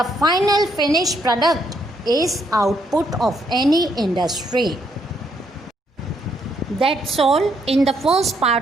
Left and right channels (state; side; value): normal; both; correlation 0.73